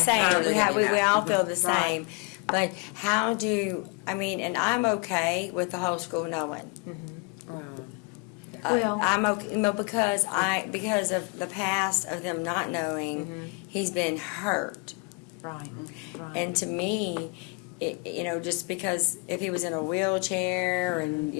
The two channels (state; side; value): quieter; right; 30.5 dB